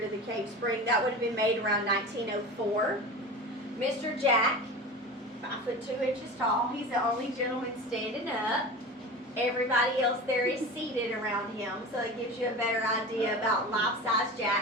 the Cave Spring. That would have been made around 1904. Mr. Jack, 5 foot 2 inches tall, he's the only gentleman standing up. Everybody else there is seated around him, so it gives you a better idea about life-size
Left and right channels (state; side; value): normal; both; correlation 0.32